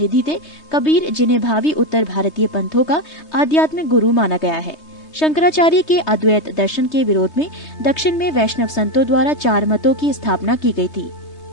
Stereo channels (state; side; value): late; right; 3.2 ms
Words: थे कबीर, जिन्हें भावी उत्तर भारतीय पंथों का आध्यात्मिक गुरु माना गया है। शंकराचार्य के अद्वैत दर्शन के विरोध में दक्षिण में वैष्णव संतों द्वारा 4 मतों की स्थापना की गई थी।